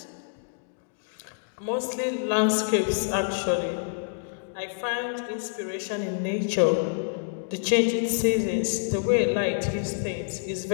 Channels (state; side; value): silent; right; digital silence